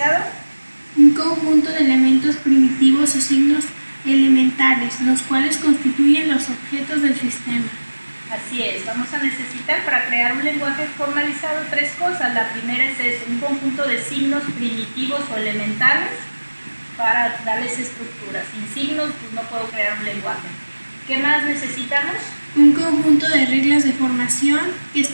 Un conjunto de elementos primitivos o signos elementales, los cuales constituyen los objetos del sistema. Así es, vamos a necesitar para crear un lenguaje formalizado tres cosas. La primera es eso, un conjunto de signos primitivos o elementales para darles estructura. Sin signos pues no puedo crear un lenguaje. ¿Qué más necesitamos? Un conjunto de reglas de formación que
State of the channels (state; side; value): inverted; both; correlation -1.00